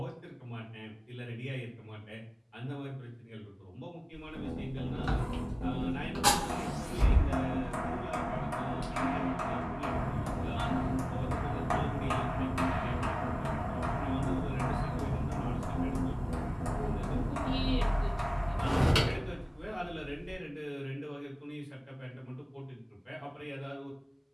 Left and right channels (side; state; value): both; identical; correlation 1.00